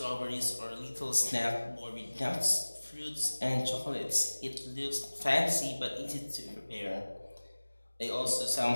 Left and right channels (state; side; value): inverted; both; correlation -1.00